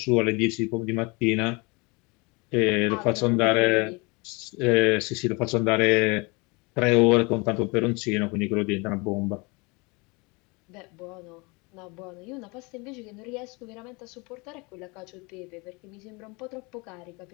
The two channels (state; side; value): quieter; right; 27.9 dB